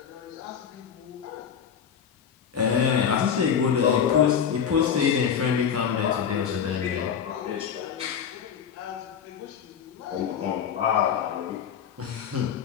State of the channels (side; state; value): right; quieter; 7.8 dB